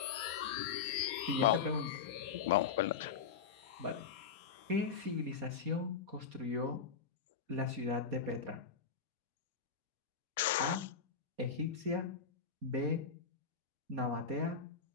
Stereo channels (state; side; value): quieter; right; 6.2 dB